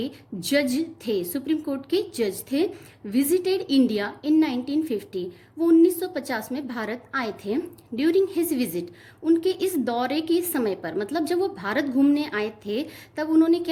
जज थे, सुप्रीम कोर्ट के जज थे। विजिटेड इंडिया इन 1950, वो 1950 में भारत आए थे। ड्यूरिंग हिज विजिट, उनके इस दौरे के समय पर, मतलब जब वो भारत घूमने आए थे तब उन्होंने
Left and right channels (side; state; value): both; identical; correlation 1.00